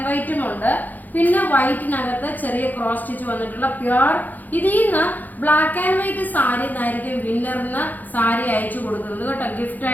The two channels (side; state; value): right; late; 0.083 ms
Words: വൈറ്റും ഉണ്ട്, പിന്നെ വൈറ്റിനകത്ത് ചെറിയ ക്രോസ് സ്റ്റിച്ച് വന്നിട്ടുള്ള പ്യുവർ. ഇതിൽ നിന്ന് ബ്ലാക്ക് ആൻഡ് വൈറ്റ് സാരി എന്നായിരിക്കും വിന്നറിന് സാരി അയച്ചു കൊടുക്കുന്നത് കേട്ടോ, ഗിഫ്റ്റ്